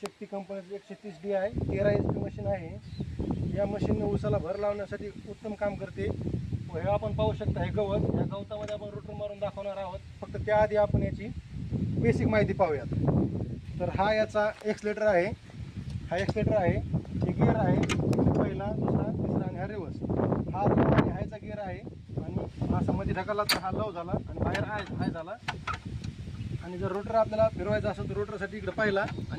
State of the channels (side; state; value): both; identical; correlation 1.00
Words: शक्ती कंपनीची 130D आहे, 13 HP मशीन आहे। या मशीनने ऊसाला भर लावण्यासाठी उत्तम काम करते। व हे आपण पाहू शकता, हे गवत, या गवतामध्ये आपण रोटर मारून दाखवणार आहोत। फक्त त्याआधी आपण याची बेसिक माहिती पाहूयात। तर हा याचा एक्सलेटर आहे, हा एक्सलेटर आहे, हे गिअर आहे, पहिला, दुसरा, तिसरा आणि हा रिवर्स। हा लो आणि हायचा गिअर आहे आणि असा मध्ये ढकलला तर हा लो झाला आणि बाहेर हाय झाला। आणि जर रोटर आपल्याला फिरवायचा असेल तर रोटरसाठी इकडे पहिला